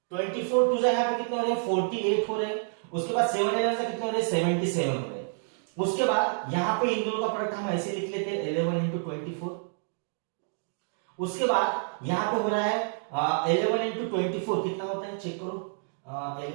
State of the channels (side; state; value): left; silent; digital silence